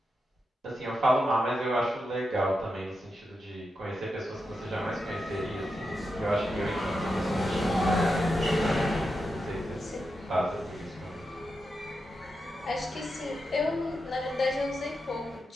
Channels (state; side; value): normal; both; correlation 0.87